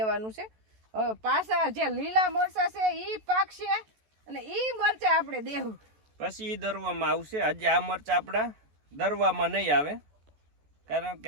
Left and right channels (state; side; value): late; left; 14 ms